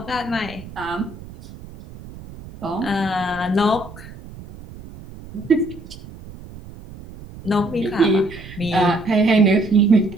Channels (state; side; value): noise; right; rumble, 16 dB below the sound